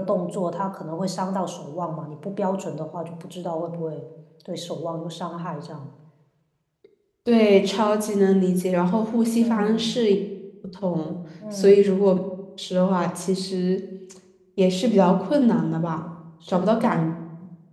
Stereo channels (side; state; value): both; identical; correlation 1.00